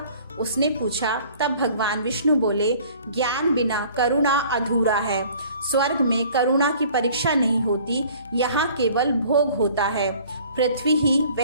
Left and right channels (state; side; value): inverted; both; correlation -0.51